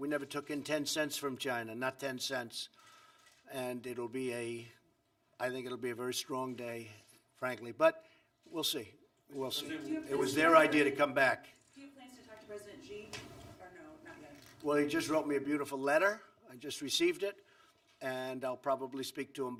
never took in 10 cents from China, not 10 cents. And it'll be I think it'll be a very strong day, frankly. But we'll see. We'll see. It was their idea to come back. Do you have plans to talk to President Xi, or no, not yet? Well, he just wrote me a beautiful letter. I just received it, and I'll probably speak to him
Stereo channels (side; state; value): both; identical; correlation 1.00